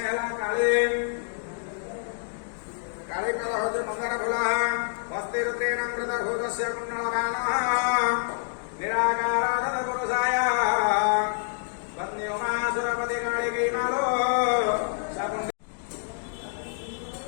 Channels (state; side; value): silent; right; digital silence